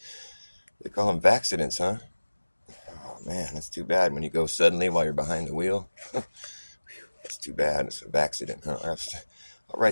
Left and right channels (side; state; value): both; inverted; correlation -1.00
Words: call them vaxidents, huh? Oh, man, that's too bad when you go suddenly while you're behind the wheel. That's too bad. It's a vaxident, huh? I'll